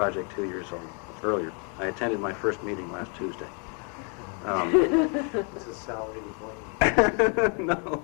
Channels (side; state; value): right; quieter; 38.5 dB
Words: 2 years earlier. I attended my first meeting last Tuesday. This is salary employment. No.